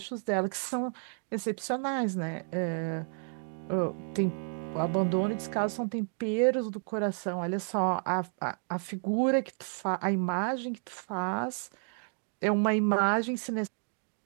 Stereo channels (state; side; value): silent; left; 57 dB below the other